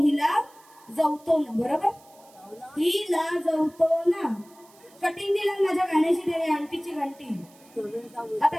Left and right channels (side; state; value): right; noise; hiss, 27 dB below the sound